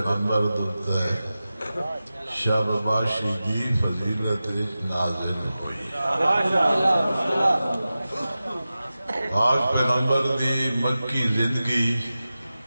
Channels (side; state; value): both; inverted; correlation -0.94